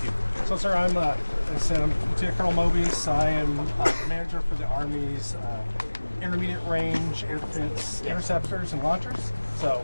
you. So, sir, I'm Lieutenant Colonel Mobius. I am manager for the Army's intermediate range air defense interceptors and launchers.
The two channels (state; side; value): inverted; both; correlation -1.00